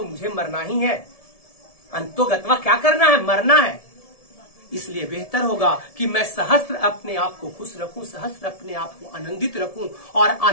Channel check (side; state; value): right; late; 1.7 ms